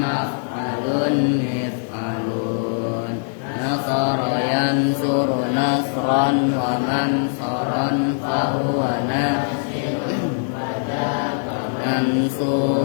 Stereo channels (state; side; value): silent; right; digital silence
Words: maf'alun mif'alun nasara yansuru nasran wa mansaran fahuwa